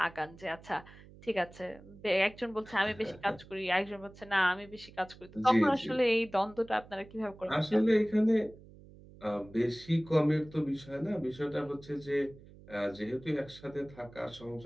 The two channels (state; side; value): noise; right; hum, 21 dB below the sound